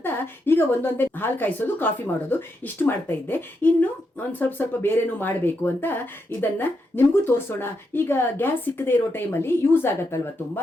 ಈಗ ಒಂದೊಂದೇ ಹಾಲು ಕಾಯಿಸೋದು, ಕಾಫಿ ಮಾಡೋದು, ಇಷ್ಟು ಮಾಡ್ತಾ ಇದ್ದೆ. ಇನ್ನು ಒಂದು ಸ್ವಲ್ಪ ಬೇರೆನೂ ಮಾಡಬೇಕು ಅಂತ ಇದನ್ನು ನಿಮಗೂ ತೋರಿಸೋಣ. ಈಗ ಗ್ಯಾಸ್ ಸಿಕ್ಕದೇ ಇರೋ ಟೈಮಲ್ಲಿ ಯೂಸ್ ಆಗತ್ತಲ್ವ ತುಂಬ.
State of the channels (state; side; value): normal; both; correlation 0.82